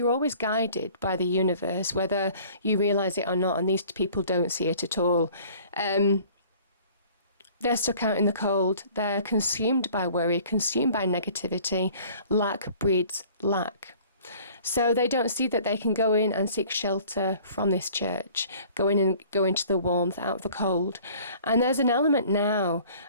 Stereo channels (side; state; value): both; inverted; correlation -0.51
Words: always guided by the universe, whether you realize it or not, and these people don't see it at all. They're stuck out in the cold. They're consumed by worry, consumed by negativity. Lack breeds lack. So they don't see that they can go in and seek shelter from this church, go in and go into the warmth, out of the cold. And there's an element now